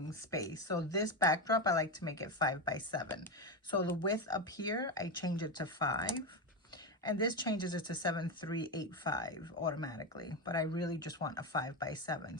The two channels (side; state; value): both; normal; correlation 0.13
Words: space. So this backdrop, I like to make it 5 by 7. So the width up here, I change it to 5. And this changes it to 7385 automatically, but I really just want a 5 by 7.